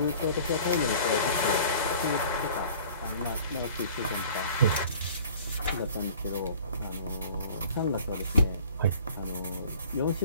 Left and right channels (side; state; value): both; inverted; correlation -0.47